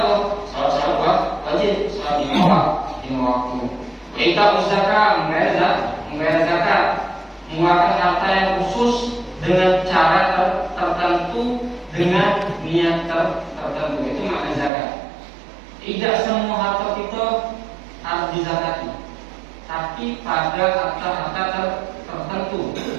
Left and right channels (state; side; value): drops out; left; at 14.7 s